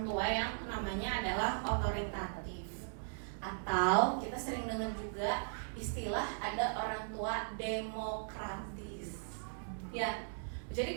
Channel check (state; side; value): silent; left; digital silence